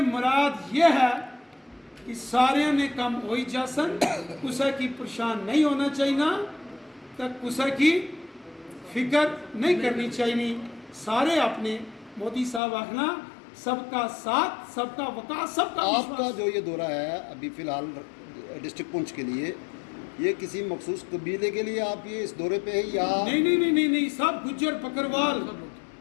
मुराद ये है कि सारे ने कम हो ही जासन, कुसा की परेशान नहीं होना चाहिए, तक कुसा की फिक्र नहीं करनी चाहिए। सारे अपने मोदी साहब आखना सबका साथ सबका विकास सबका आपका जो ये दौरा है अभी फिलहाल डिस्ट्रिक्ट पुंछ के लिए, ये किसी मखसूस कबीले के लिए आप ये इस दौरे पे है या नहीं सब गुज्जर बकरवाल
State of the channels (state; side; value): drops out; right; at 12.6 s